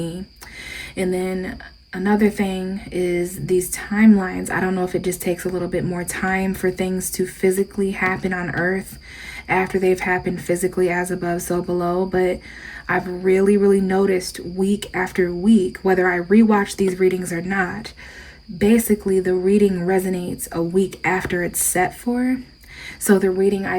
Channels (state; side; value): identical; both; correlation 1.00